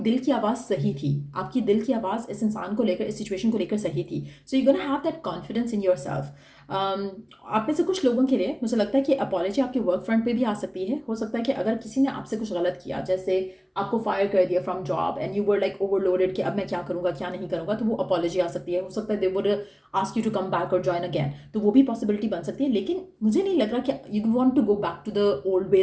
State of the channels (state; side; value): identical; both; correlation 1.00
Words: की आवाज़ सही थी। आपकी दिल की आवाज़ इस इंसान को लेकर, इस सिचुएशन को लेकर सही थी। So you gonna have that confidence in yourself. आप में से कुछ लोगों के लिए मुझे लगता है कि अपॉलॉजी आपके वर्क फ्रंट पे भी आ सकती है। हो सकता है कि अगर किसी ने आपसे कुछ गलत किया, जैसे आपको फायर कर दिया from job and you were like overloaded कि अब मैं क्या करूँगा क्या नहीं करूँगा, तो वो अपॉलॉजी आ सकती है। हो सकता है they would ask you to come back और जॉइन अगैन, तो वो भी पॉसिबिलिटी बन सकती है। लेकिन मुझे नहीं लग रहा कि you want to go back to the old